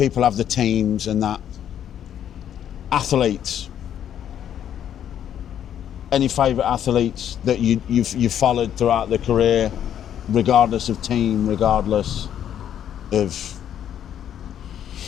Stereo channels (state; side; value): quieter; right; 9.9 dB